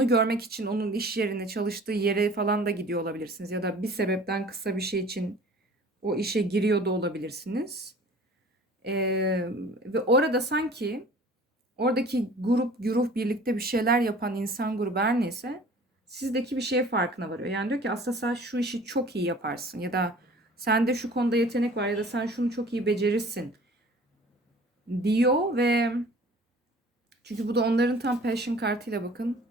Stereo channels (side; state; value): both; normal; correlation 0.47